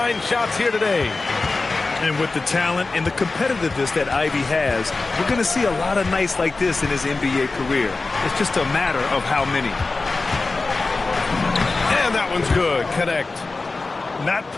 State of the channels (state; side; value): quieter; right; 3.7 dB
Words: shots here today. And with the talent and the competitiveness that Ivy has, we're going to see a lot of nights like this in his NBA career. It's just a matter of how many. And that one's good. Connect. Not